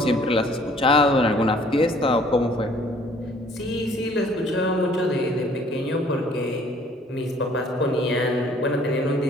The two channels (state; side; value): normal; both; correlation 0.58